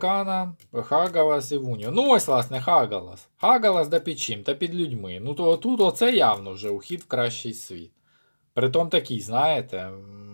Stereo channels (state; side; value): inverted; both; correlation -1.00